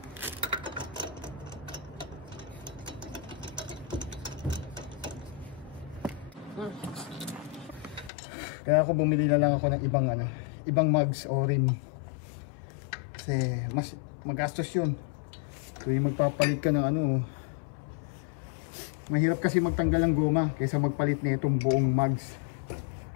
Kaya ako bumili na lang ako ng ibang mugs o rim. Kasi mas magastos yun. Kung magpapalit ka ng mahirap kasi magtanggal ng goma kaysa magpalit na itong buong mugs.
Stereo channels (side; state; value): right; drops out; at 8.1 s